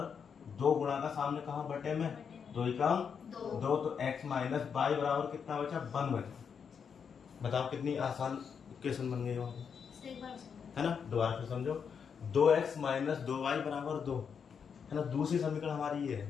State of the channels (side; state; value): right; quieter; 6.7 dB